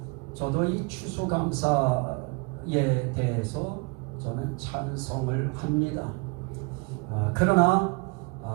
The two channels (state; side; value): quieter; left; 30.4 dB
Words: 저도 이 추수감사에 대해서 저는 찬성을 합니다. 그러나